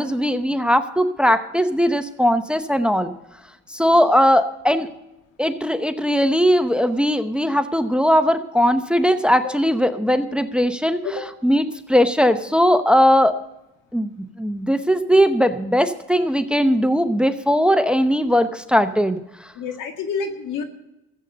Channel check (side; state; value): both; normal; correlation 0.89